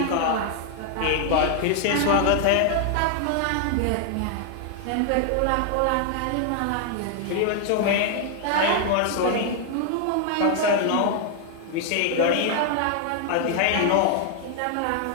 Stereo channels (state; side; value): different; both; correlation 0.00